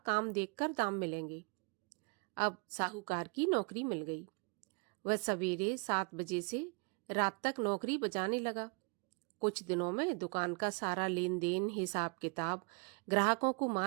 देखकर दाम मिलेंगे। अब साहूकार की नौकरी मिल गई। वह सवेरे 7 बजे से रात तक नौकरी बजाने लगा। कुछ दिनों में दुकान का सारा लेन देन, हिसाब किताब, ग्राहकों को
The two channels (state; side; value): quieter; left; 33.6 dB